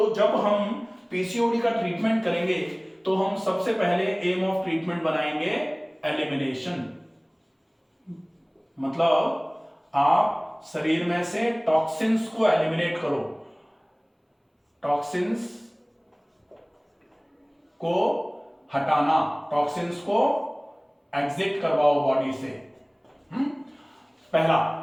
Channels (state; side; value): identical; both; correlation 1.00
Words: जब हम पीसीओडी का ट्रीटमेंट करेंगे तो हम सबसे पहले एम ऑफ ट्रीटमेंट बनाएंगे एलिमिनेशन, मतलब आप शरीर में से टॉक्सिन्स को एलिमिनेट करो, टॉक्सिन्स को हटाना, टॉक्सिन्स को एग्जिट करवाओ बॉडी से।